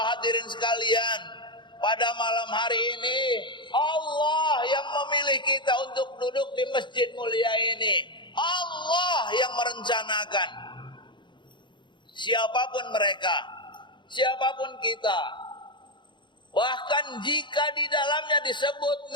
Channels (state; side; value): late; right; 0.23 ms